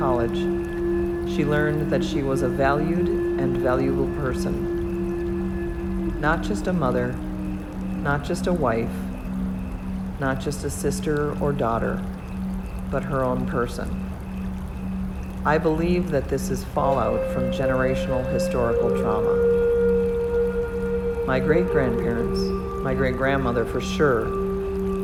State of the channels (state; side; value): identical; both; correlation 1.00